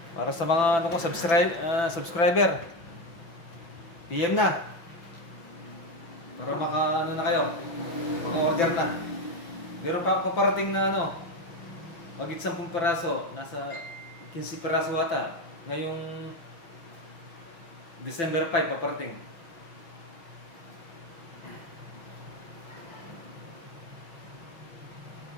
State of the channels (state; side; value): late; right; 6.0 ms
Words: Para sa mga subscriber, PM na. Para na kayo. Maka-order na. Meron pa paparating na magit 10 piraso, nasa 15 piraso ata. Ngayong December 5 paparating.